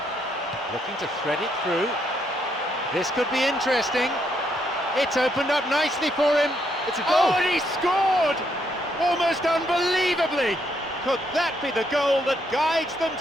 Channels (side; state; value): both; normal; correlation 0.74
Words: Looking to thread it through. This could be interesting. It's opened up nicely for him. It's a goal. Oh, and he scored! Almost unbelievably. Could that be the goal that guides them